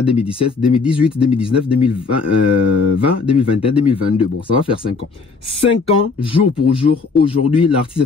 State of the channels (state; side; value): quieter; right; 4.6 dB